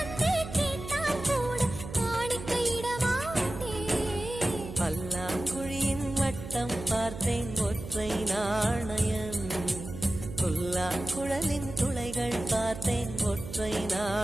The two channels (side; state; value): right; noise; hum, 11 dB below the sound